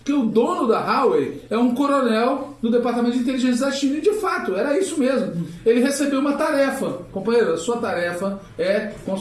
o dono da Huawei é um coronel do Departamento de Inteligência da China. E, de fato, era isso mesmo. Ele recebeu uma tarefa. Companheiro, a sua tarefa é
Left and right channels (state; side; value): identical; both; correlation 1.00